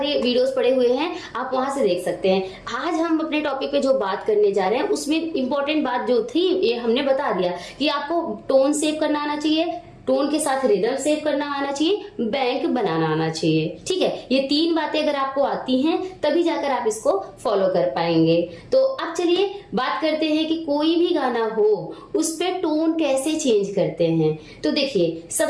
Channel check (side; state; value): both; identical; correlation 1.00